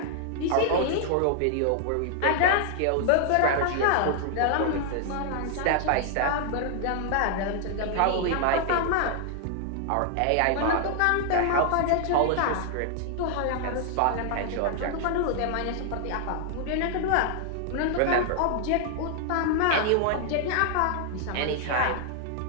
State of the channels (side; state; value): both; different; correlation 0.00